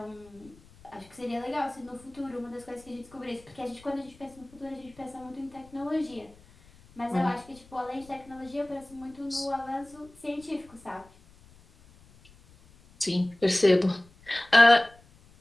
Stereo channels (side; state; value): left; noise; rumble, 25 dB below the sound